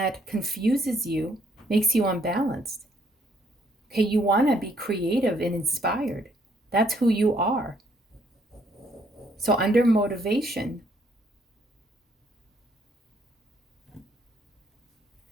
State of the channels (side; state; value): both; normal; correlation 0.68